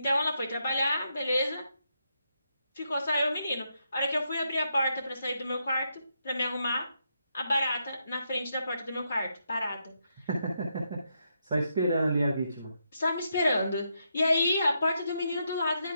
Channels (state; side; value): inverted; both; correlation -0.81